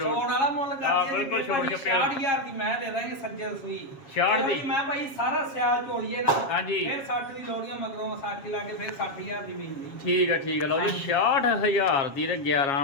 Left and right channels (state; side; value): late; right; 7.4 ms